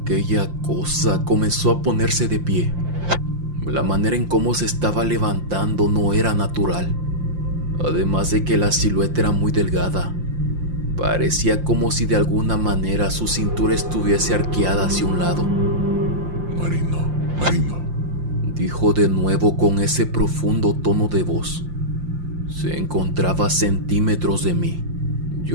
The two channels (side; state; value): left; late; 5.7 ms